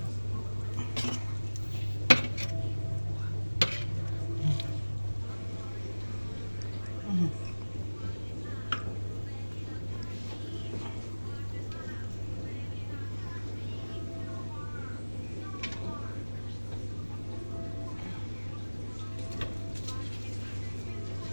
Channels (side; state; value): both; inverted; correlation -1.00